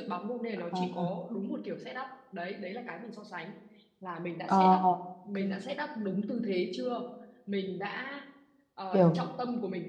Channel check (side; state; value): both; identical; correlation 1.00